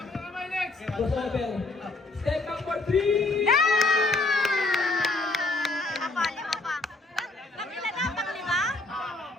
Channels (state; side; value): quieter; right; 3.1 dB